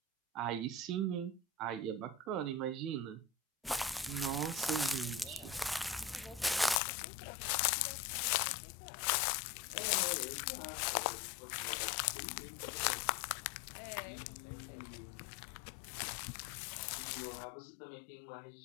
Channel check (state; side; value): drops out; right; at 6.8 s